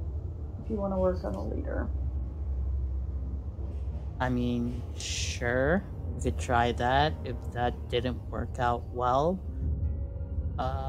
If you want to work on the leader. I mean, sure, we could try that. If that didn't work out well,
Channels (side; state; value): both; identical; correlation 1.00